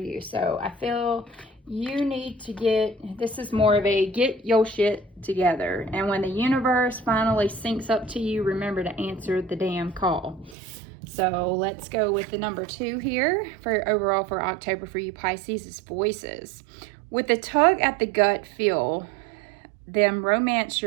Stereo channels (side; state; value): left; drops out; at 10.6 s